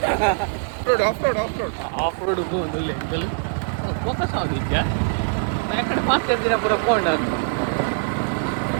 off road ಹೋಗುದಿಲ್ಲ ಎಂಕಲ್ focus ಆಗಿದ್ಯಾ ಯಾಕಡೆ fast ಇರ್ತೀರ ಪೂರ phone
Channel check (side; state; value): left; silent; digital silence